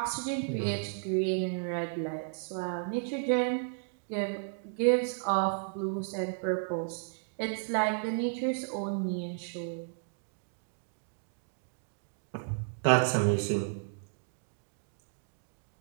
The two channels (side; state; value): left; silent; digital silence